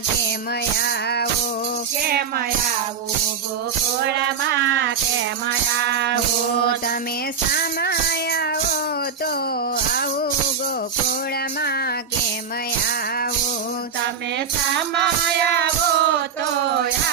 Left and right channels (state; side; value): quieter; left; 6.4 dB